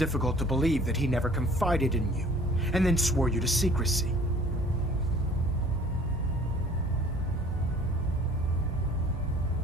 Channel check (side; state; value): both; normal; correlation 0.52